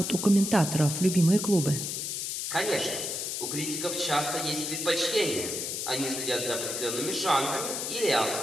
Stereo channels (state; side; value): noise; left; hiss, 3 dB below the sound